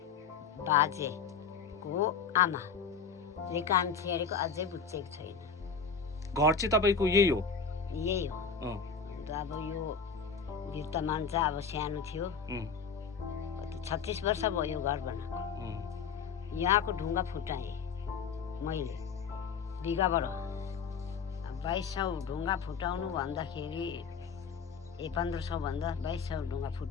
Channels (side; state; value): right; quieter; 5.9 dB